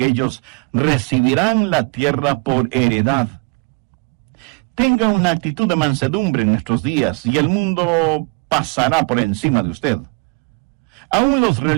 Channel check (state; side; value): quieter; left; 31.4 dB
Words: ellos recibirán la tierra por heredad. Tenga una actitud de mansedumbre en nuestros días y el mundo pasará por encima de usted. Aún los